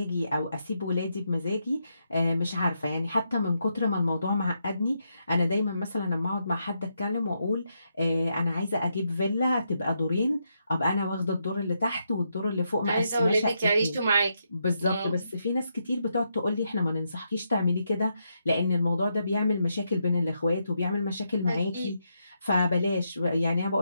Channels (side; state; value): both; inverted; correlation -0.81